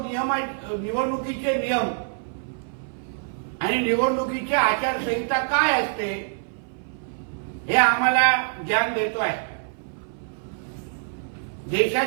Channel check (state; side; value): silent; left; 57 dB below the other